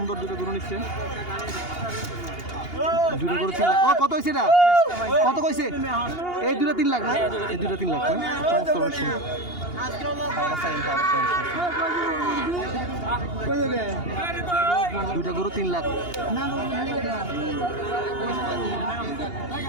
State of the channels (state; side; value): late; right; 2.8 ms